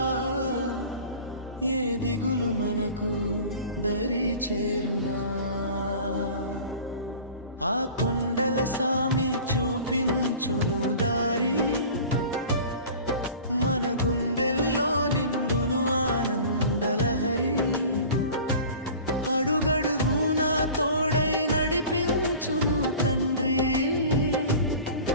ఏ దిగులు మనకు దరి చేరునా. ఆ కొండల సామి చూపించును దారి, మన గుండెల్లో నిండును ఆనందలహరి. అడుగడుగునా తోడై నడిపించును తండ్రి,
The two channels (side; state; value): both; inverted; correlation -0.42